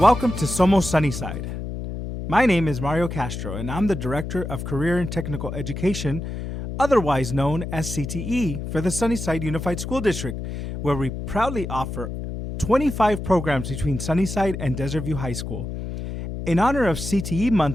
welcome to Somos Sunnyside. My name is Mario Castro and I'm the Director of Career and Technical Education, otherwise known as CTE, for the Sunnyside Unified School District, where we proudly offer 25 programs between Sunnyside and Desert View High School. In honor of CTE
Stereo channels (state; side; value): noise; left; hum, 6 dB below the sound